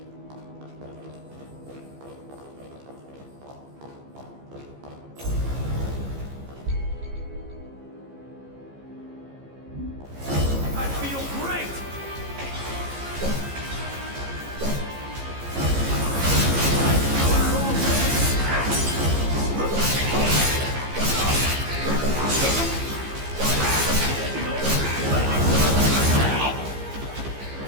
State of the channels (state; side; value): late; left; 15 ms